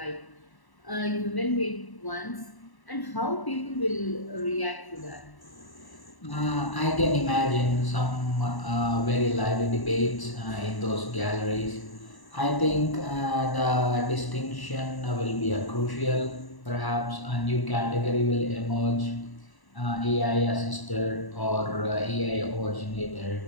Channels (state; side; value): late; right; 1.0 ms